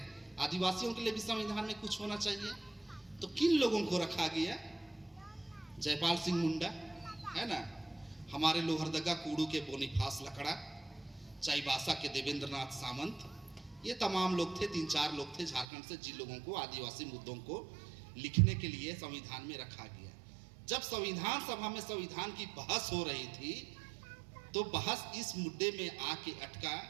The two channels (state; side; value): drops out; left; at 15.7 s